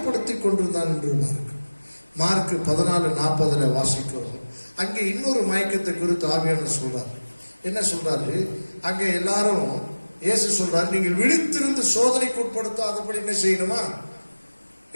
கொண்டிருந்தான் என்று மார்க் 14:40 வாசிக்கிறோம். அங்கே இன்னொரு மயக்கத்தை குறித்து ஆவியானவர் சொல்றார். என்ன சொல்றாரு? அங்கே எல்லாரும் இயேசு சொல்றாரு, நீங்கள் விழித்திருந்து சோதனைக்கு உட்படுத்தாதபடி என்ன செய்யணுமா?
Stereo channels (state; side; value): inverted; both; correlation -1.00